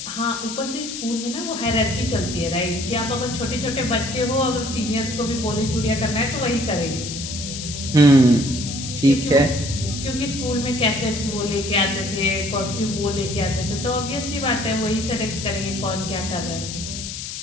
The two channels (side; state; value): left; noise; hiss, 7 dB below the sound